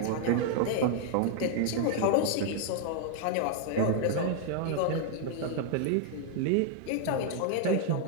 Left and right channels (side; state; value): both; different; correlation 0.00